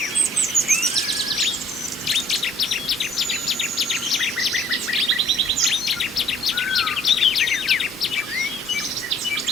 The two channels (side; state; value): both; normal; correlation 0.59